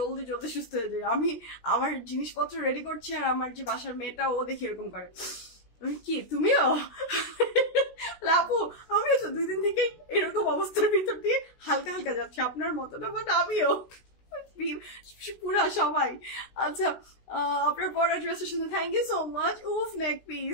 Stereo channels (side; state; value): right; late; 16 ms